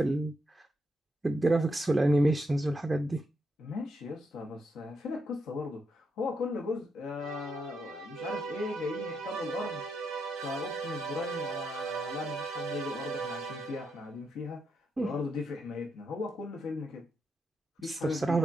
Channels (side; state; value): both; normal; correlation 0.82